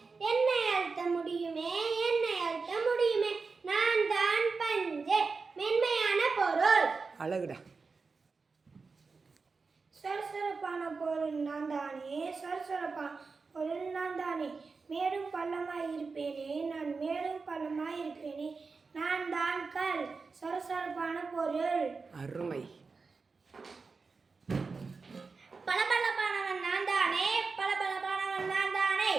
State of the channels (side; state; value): left; quieter; 4.5 dB